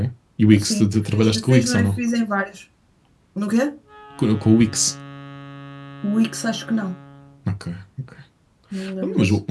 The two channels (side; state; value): both; identical; correlation 1.00